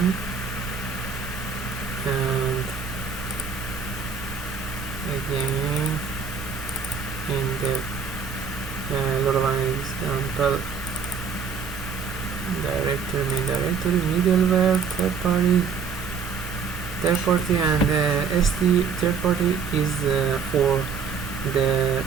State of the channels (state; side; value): quieter; left; 6.0 dB